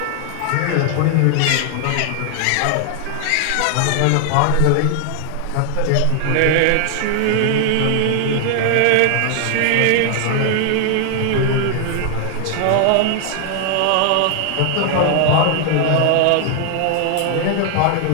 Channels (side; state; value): both; different; correlation 0.00